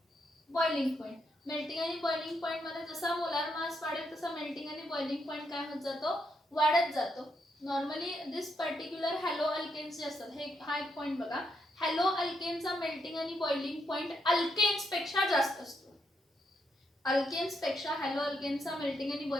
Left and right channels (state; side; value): normal; both; correlation 0.79